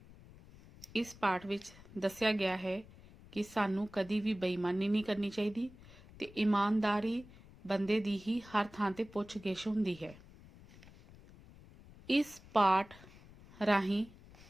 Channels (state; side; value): noise; left; rumble, 21 dB below the sound